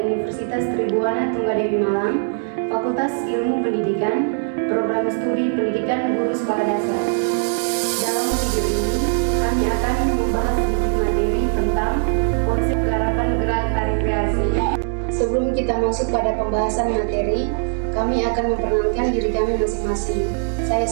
Tribuana Tunggadewi Malang, Fakultas Ilmu Pendidikan, Program Studi Pendidikan Guru Sekolah Dasar. Dalam video ini, kami akan membahas sedikit materi tentang konsep garapan gerak tari kreasi. Sebelum kita masuk pada pembahasan materi, kami akan memperkenalkan diri kami masing-masing. Saya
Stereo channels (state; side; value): silent; left; digital silence